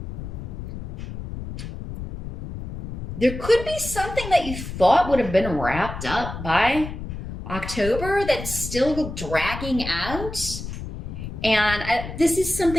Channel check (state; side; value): noise; left; rumble, 8 dB below the sound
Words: There could be something that you thought would have been wrapped up by October that's still dragging out. And this is